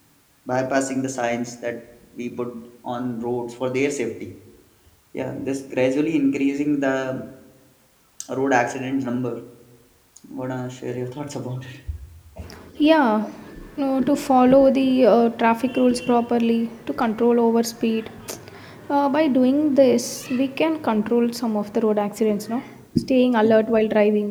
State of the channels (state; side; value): identical; both; correlation 1.00